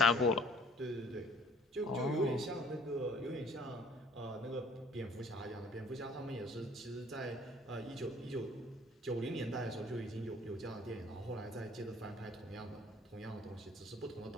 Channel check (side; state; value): both; normal; correlation 0.55